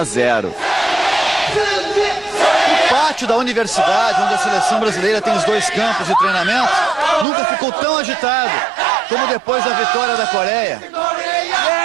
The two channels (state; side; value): drops out; left; at 7.2 s